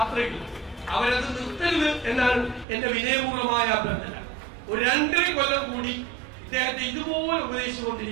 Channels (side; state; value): left; drops out; at 2.7 s